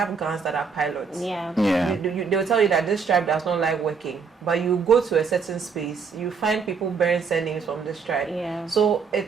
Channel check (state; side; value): quieter; left; 5.5 dB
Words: guns that are pilots. Yeah. They'll tell you that this tribe does not like working, but you go to a certain space, you find people bearing surnames from this tribe. Yeah. So